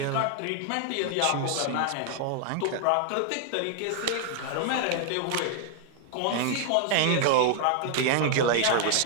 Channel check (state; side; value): different; both; correlation 0.00